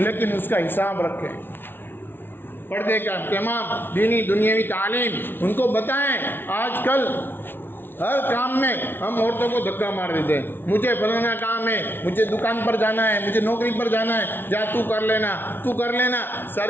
लेकिन उसका हिसाब रखें। पर्दे का इत्माम, दीनी दुनियावी तालीम उनको बताएं। आजकल हर काम में हम औरतों को धक्का मार देते हैं, मुझे फलाना काम है, मुझे दुकान पर जाना है, मुझे नौकरी पर जाना है, जा तू कर लेना, तू कर लेना।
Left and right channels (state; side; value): late; right; 0.10 ms